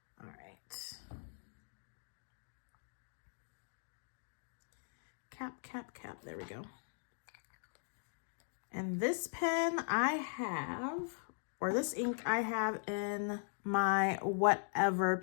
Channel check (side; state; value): right; silent; digital silence